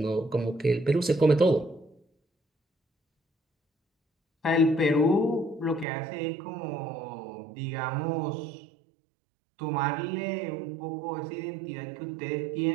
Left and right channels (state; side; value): drops out; left; at 5.9 s